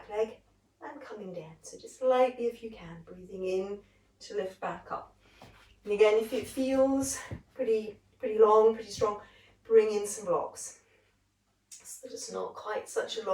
leg and coming down. So just lightly if you can, breathing in to lift back up. And again, if it feels pretty long, pretty strong, bring in some blocks so that it's not quite such a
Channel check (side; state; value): both; identical; correlation 1.00